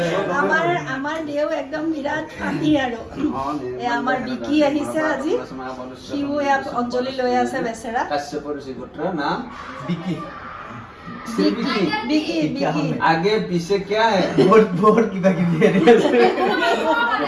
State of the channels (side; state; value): both; identical; correlation 1.00